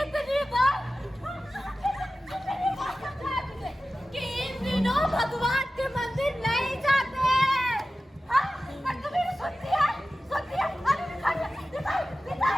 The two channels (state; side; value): normal; both; correlation 0.95